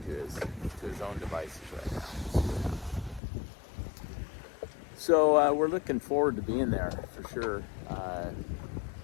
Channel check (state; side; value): drops out; right; at 3.2 s